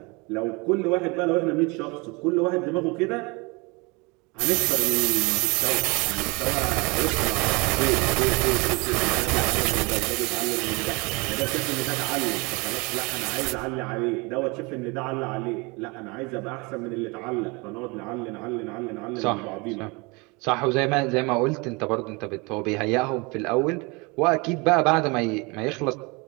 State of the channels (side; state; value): left; quieter; 27.7 dB